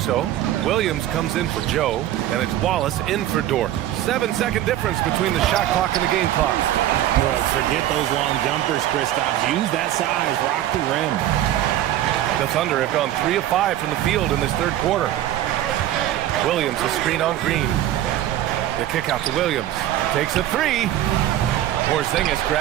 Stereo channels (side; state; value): left; quieter; 12.9 dB